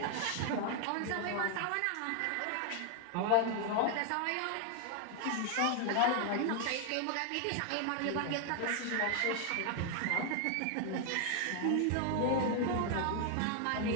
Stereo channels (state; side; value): different; both; correlation 0.00